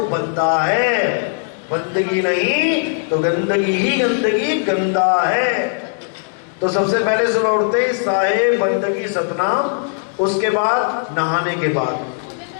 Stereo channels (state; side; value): silent; right; 60 dB below the other